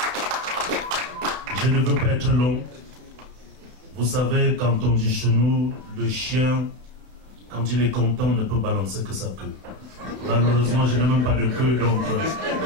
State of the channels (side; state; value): left; late; 32 ms